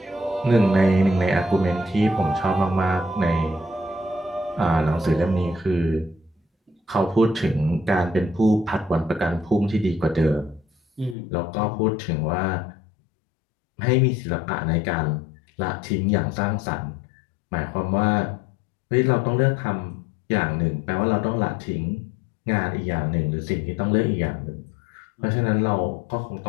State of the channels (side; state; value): right; drops out; at 11.2 s